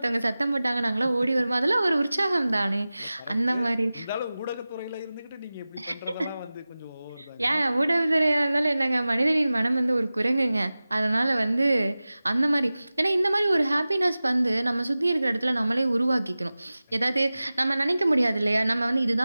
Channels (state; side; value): inverted; both; correlation -0.97